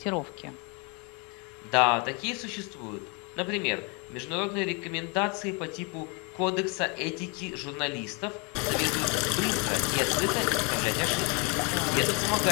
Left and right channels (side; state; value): right; quieter; 31.9 dB